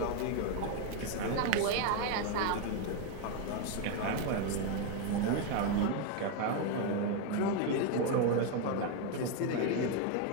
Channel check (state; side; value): different; both; correlation 0.01